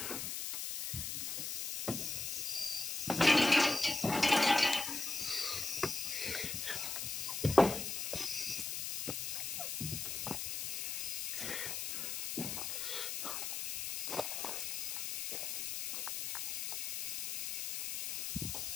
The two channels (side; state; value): left; noise; hiss, 2 dB below the sound